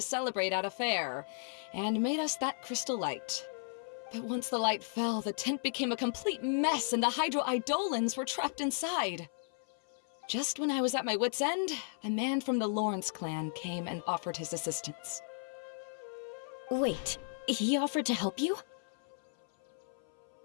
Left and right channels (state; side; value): silent; right; 54 dB below the other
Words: celebrate at a fair, and made us that crystal light. But once the light fell, the tent became a complete mess and the Hydro-Eidolons were trapped inside. Just when I was at my wit's end, a man from the Lawrence clan came and offered his assistance. Wait, he offered to help you?